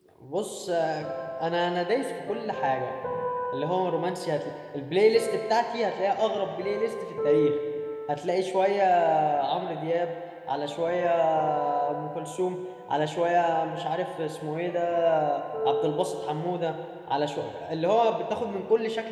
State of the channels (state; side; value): identical; both; correlation 1.00